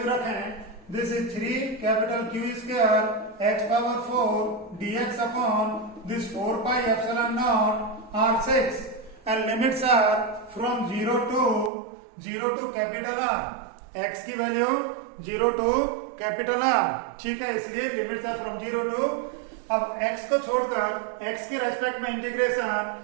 रखें, this is 3 capital Q square x power 4 dx upon this 4 pi epsilon naught R6 and limits are from 0 to capital R, x की वैल्यू 0 टू कैपिटल R, ठीक है, इसलिए लिमिट्स आर फ्रॉम 0 टू, अब x को छोड़कर x के respect में integration,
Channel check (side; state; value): left; drops out; at 11.7 s